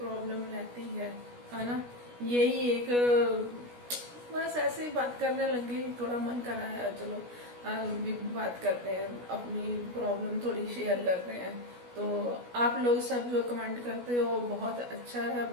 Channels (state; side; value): late; left; 16 ms